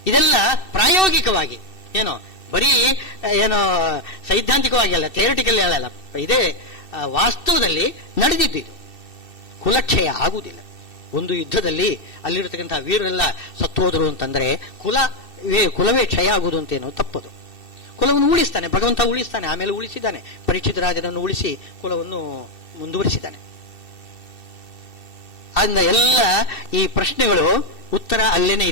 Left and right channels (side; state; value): right; late; 2.7 ms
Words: ಇದೆಲ್ಲ ಪ್ರಾಯೋಗಿಕವಾಗಿ, ಏನೋ ಬರೀ ಏನೋ ಸೈದ್ಧಾಂತಿಕವಾಗಿ ಅಲ್ಲ, ಥಿಯರಿಟಿಕಲ್ ಅಲ್ಲ, ಇದೇ ವಾಸ್ತವದಲ್ಲಿ ನಡೆದಿದ್ದು. ಇದು ಕುಲಕ್ಷಯ ಆಗುವುದಿಲ್ಲ. ಒಂದು ಯುದ್ಧದಲ್ಲಿ ಅಲ್ಲಿರತಕ್ಕಂತಹ ವೀರರೆಲ್ಲ ಸತ್ತೋದ್ರು ಅಂತಂದ್ರೆ ಕುಲವೇ ಕ್ಷಯ ಆಗುವುದು ಅಂತೇನೋ ತಪ್ಪದು. ಕುಲವನ್ನು ಉಳಿಸ್ತಾನೆ ಭಗವಂತ, ಉಳಿಸ್ತಾನೆ. ಆಮೇಲೆ ಉಳಿಸಿದ್ದಾನೆ, ಪರೀಕ್ಷಿತ ರಾಜನನ್ನು ಉಳಿಸಿ ಕುಲವನ್ನು ಮುಂದುವರಿಸಿದ್ದಾನೆ. ಆದ್ದರಿಂದ ಎಲ್ಲ ಈ ಪ್ರಶ್ನೆಗಳು ಉತ್ತರ ಅಲ್ಲೇನೆ